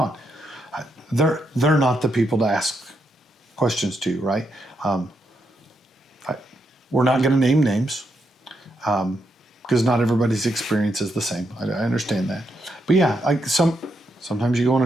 They're not the people to ask questions to, right? We're not going to name names because not everybody's experience is the same. I understand that. But yeah, sometimes you go on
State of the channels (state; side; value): normal; both; correlation 0.80